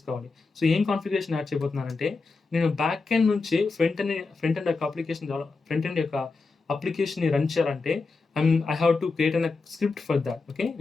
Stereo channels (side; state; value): right; quieter; 4.0 dB